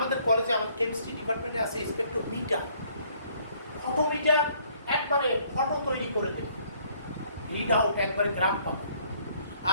কলেজে, আমাদের কেমিস্ট্রি ডিপার্টমেন্টে আছে স্পেকট্রোমিটার। ফটোমিটার একবারে ফটো তৈরি করে দেবে, রিড আউট একবারে গ্রাফ পাবে।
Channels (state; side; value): inverted; both; correlation -0.63